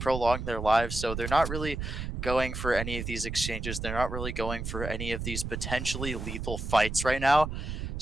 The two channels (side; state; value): right; noise; rumble, 5 dB below the sound